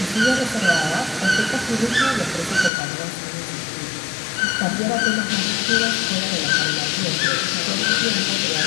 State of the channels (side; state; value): right; drops out; at 2.7 s